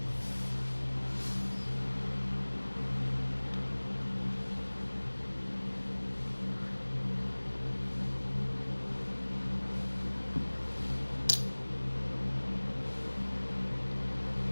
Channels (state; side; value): inverted; both; correlation -1.00